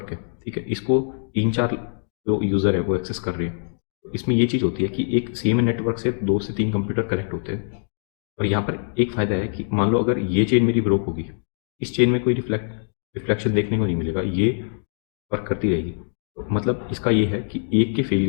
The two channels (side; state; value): right; silent; digital silence